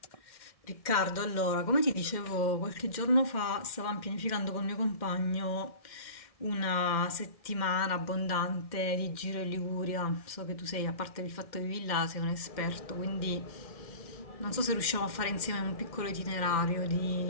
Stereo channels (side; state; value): right; late; 2.1 ms